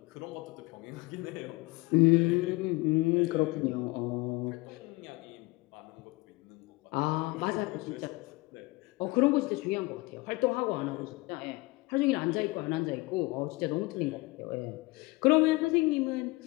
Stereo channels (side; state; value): right; quieter; 23.3 dB